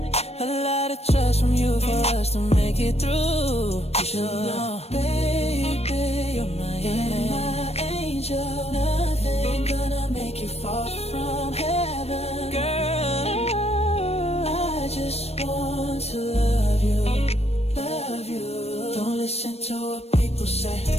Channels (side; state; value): right; late; 0.30 ms